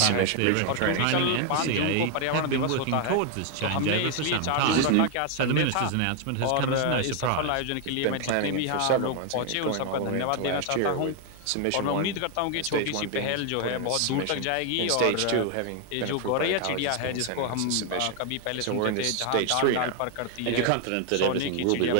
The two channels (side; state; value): both; different; correlation 0.01